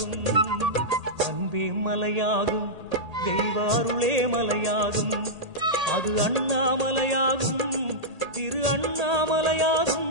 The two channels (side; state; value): left; late; 1.8 ms